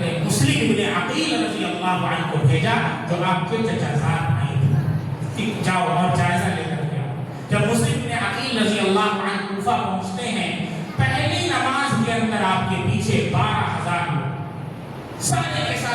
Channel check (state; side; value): identical; both; correlation 1.00